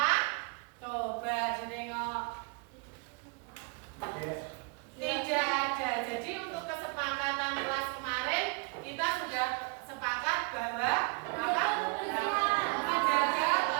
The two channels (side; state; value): left; quieter; 32.5 dB